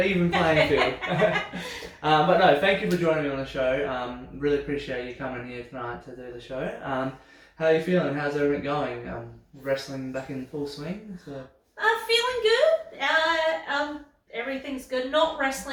even playing field. But no, thank you for joining me on the show. Really appreciate you coming here tonight to do the show. How are you feeling? How's everything going? Wrestling back in full swing? So. Feeling good. Everything's good. Not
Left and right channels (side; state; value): both; identical; correlation 1.00